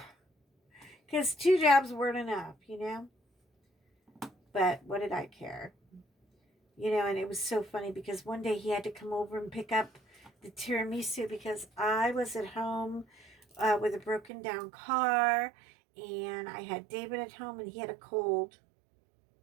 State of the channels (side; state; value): left; drops out; at 14.3 s